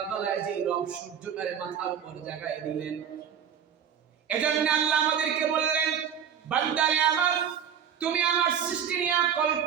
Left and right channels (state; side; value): quieter; left; 8.4 dB